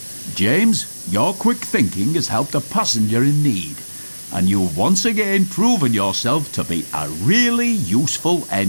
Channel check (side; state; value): both; inverted; correlation -1.00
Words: "James, your quick thinking has helped a passenger in need, and you've once again proven yourself to be a really useful